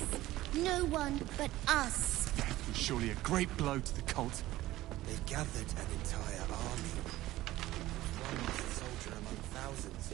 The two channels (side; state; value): left; quieter; 16.4 dB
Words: No one but us. Surely a great blow to the cult. They've gathered an entire army. One lost soldier among thousands.